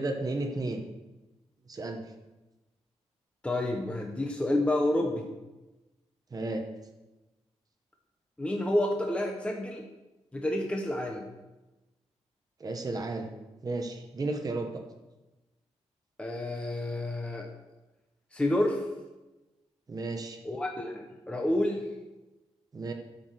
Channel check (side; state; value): both; normal; correlation 0.87